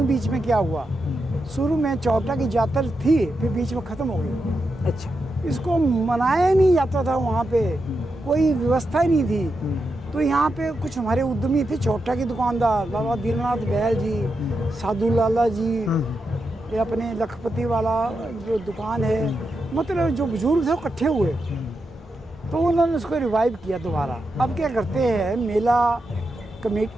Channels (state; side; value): normal; both; correlation 0.87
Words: बीच में क्या हुआ। शुरू में चौटा की जातर थी, फिर बीच में ख़त्म हो गई। अच्छा। इसको मनाया नहीं जाता था, वहाँ पे कोई व्यवस्था ही नहीं थी। तो यहाँ पे कुछ हमारे उद्यमी थे, चौटा की दुकानदार, बाबा दीननाथ बहल जी, साधु लाला जी, ये अपने लखपति वाला जो दुकान है, मतलब जो बुजुर्ग थे वो इकट्ठे हुए, तो उन्होंने उसको रिवाइव किया दोबारा। अब क्या करते हैं, मेला